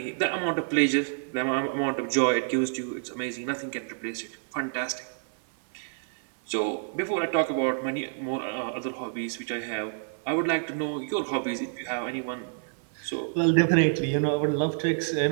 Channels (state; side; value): silent; left; 59 dB below the other